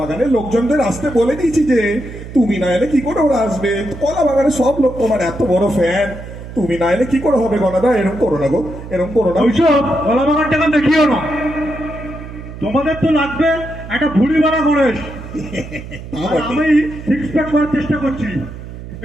লোকজনদের আসতে বলে দিয়েছি যে তুমি না এলে কি করে ওরা আসবে? কলা বাগানের সব লোক তোমার এত বড় ফ্যান, তুমি না এলে কি করে হবে গনাদা? এরকম করো না গো, এরকম করো না। ওইসব কলা বাগানটাকে দেখিও না। তোমাদের তো লাগবে একটা ভুড়ি মারা গণেশ, আর আমি 6 প্যাক করার চেষ্টা করছি।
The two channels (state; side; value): noise; right; hum, 12 dB below the sound